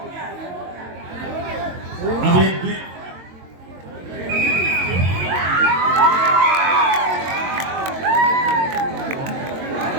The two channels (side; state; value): left; late; 22 ms